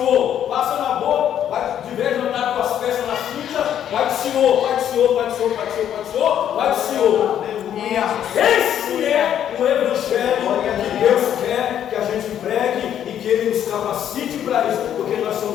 Passa na boca, vai de vez em andar com as peças na cinta, vai do Senhor, vai do Senhor, vai do Senhor, vai do Senhor, vai do Senhor, vai do Senhor. Esse é o evangelho que Deus quer que a gente pregue e que Ele nos capacite para isso, porque nós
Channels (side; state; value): right; quieter; 10.0 dB